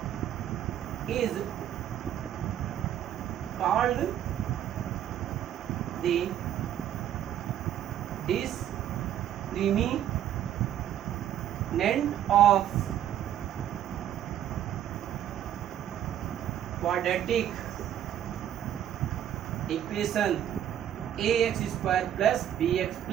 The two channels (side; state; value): left; quieter; 10.8 dB